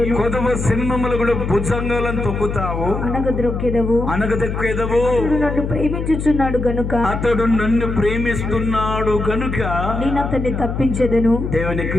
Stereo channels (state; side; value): noise; left; hum, 4 dB below the sound